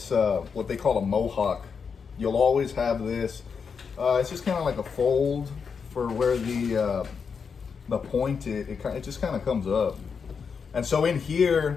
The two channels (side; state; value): right; quieter; 5.9 dB